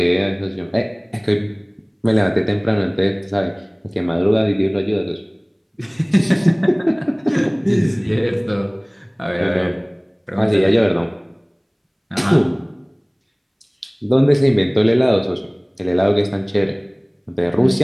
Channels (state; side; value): identical; both; correlation 1.00